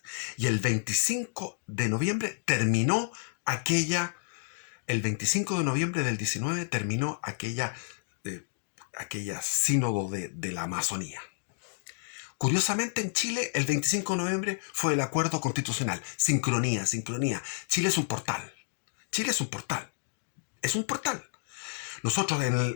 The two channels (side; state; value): right; silent; digital silence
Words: Y el 25 de noviembre terminó el 25 de noviembre del 19 terminó aquella sínodo de la Amazonía. Curiosamente, en Chile, el 25 de noviembre fue el acuerdo constitucional. Sincronía, sincronía. Chile es un portal. Chile es un portal. Es un portal. Nosotros